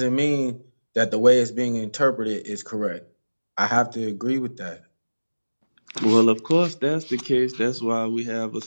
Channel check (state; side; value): inverted; both; correlation -1.00